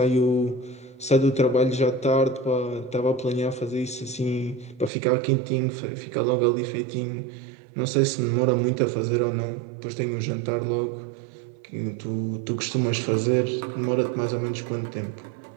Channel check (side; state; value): left; drops out; at 4.9 s